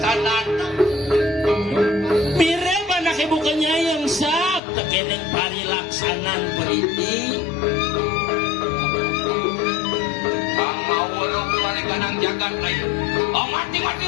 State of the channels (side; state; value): right; drops out; at 4.6 s